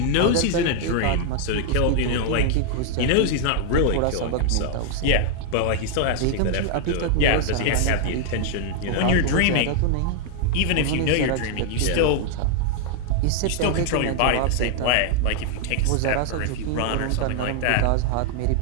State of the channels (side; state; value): both; different; correlation 0.00